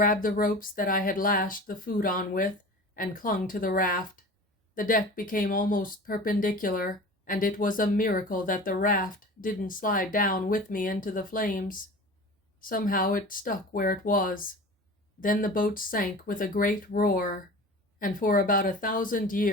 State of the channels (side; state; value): both; normal; correlation 0.37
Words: the ropes that I had lashed the food on with and clung to the raft. The deck became almost perpendicular, and it was a miracle that the raft didn't slide down with me into the flames. Somehow it stuck where it was. Then the boat sank with a great roar, and for about 1,000